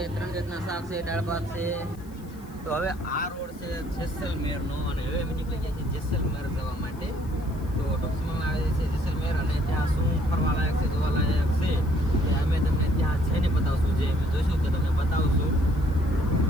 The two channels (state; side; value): noise; left; hiss, 26 dB below the sound